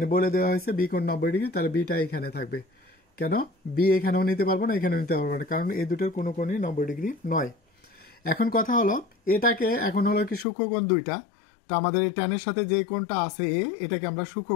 বলে দেওয়া হয়েছে বি কোণ 90 ডিগ্রি, তাহলে বিটা এখানে থাকবে। কেন বি এখানেও নিতে পারবো না, এখানেও নিতে পারবো না, কারণ এই দুটোর কোনো কোণই 90 ডিগ্রি নয়। এখন কথা হলো, এটাকে এখন হলো কি সূক্ষ্মকোণ দুইটা, তো আমাদের এই ট্যানের সাথে যে কোণটা আছে এটাকে আমরা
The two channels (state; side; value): drops out; right; at 10.5 s